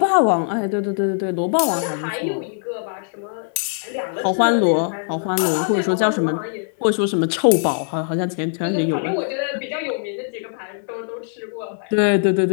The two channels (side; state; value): right; silent; digital silence